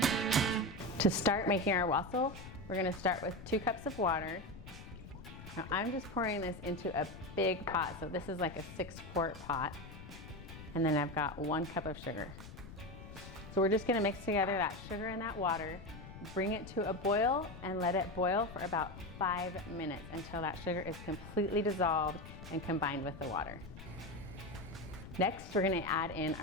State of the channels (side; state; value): left; noise; rumble, 14 dB below the sound